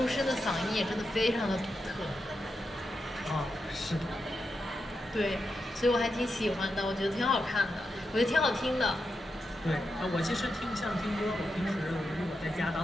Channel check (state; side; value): normal; both; correlation 0.87